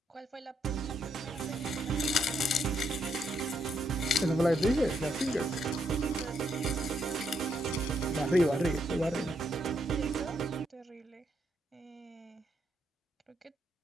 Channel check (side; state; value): both; normal; correlation 0.76